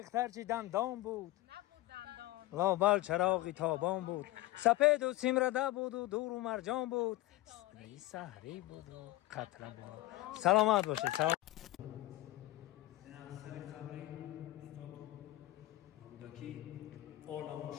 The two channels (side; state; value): right; quieter; 17.5 dB